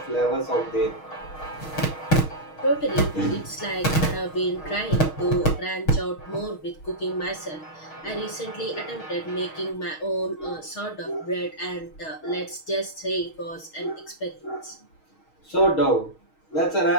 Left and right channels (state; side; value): late; right; 6.4 ms